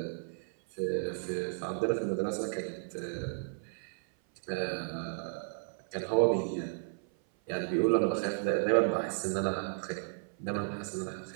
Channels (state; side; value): silent; left; 55 dB below the other